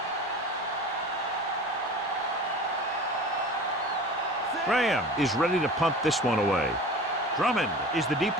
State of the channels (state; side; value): normal; both; correlation 0.37